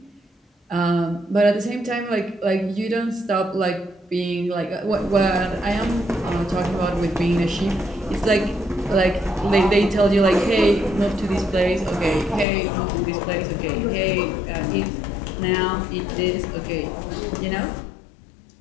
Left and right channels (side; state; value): right; drops out; at 12.5 s